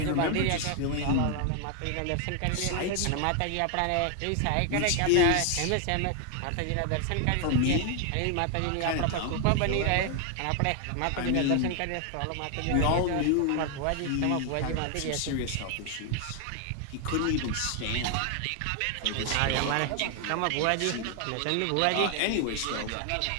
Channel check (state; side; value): different; both; correlation 0.00